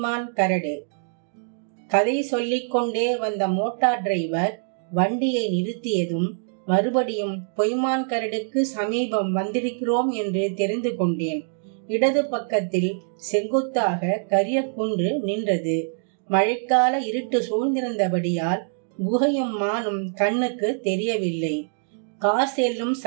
கரடு. கதை சொல்லிக்கொண்டே வந்த மோட்டார் டிரைவர் வண்டியை நிறுத்தியதும் மறுபடியும் பொய்மான் கரடுக்கு சமீபம் வந்திருக்கிறோம் என்று தெரிந்து கொண்டேன். இடது பக்கத்தில் செங்குத்தாக கரிய குன்று நின்றது. மழைக்கால இருட்டு சூழ்ந்திருந்தபடியால் குகையும் மானும் கண்ணுக்கு தெரியவில்லை. கார் செல்லும்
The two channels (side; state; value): left; silent; digital silence